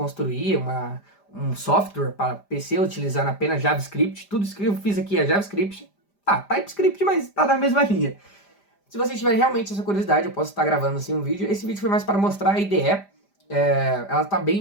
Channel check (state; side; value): late; right; 5.0 ms